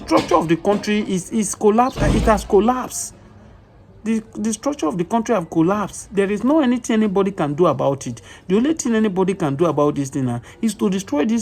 of the country is collapsed. It has collapsed. The structure of the country have collapsed. There is no anything anybody can do about it. The only thing anybody can do about this thing is to destroy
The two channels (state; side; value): identical; both; correlation 1.00